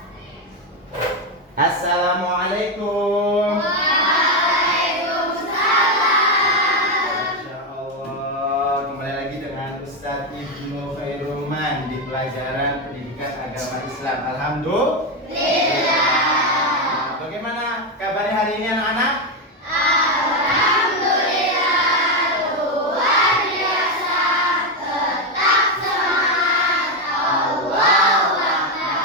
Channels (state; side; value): normal; both; correlation 0.08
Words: Assalamualaikum. Waalaikumsalam. Masya Allah, kembali lagi dengan Ustadz Ibnu Khairuman di pelajaran pendidikan agama Islam. Alhamdulillah. Bagaimana kabarnya hari ini anak-anak? Alhamdulillah, luar biasa, tetap semangat, Allahu